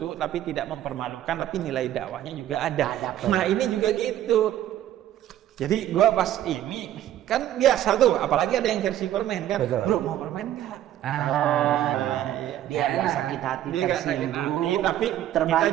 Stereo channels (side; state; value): left; quieter; 12.3 dB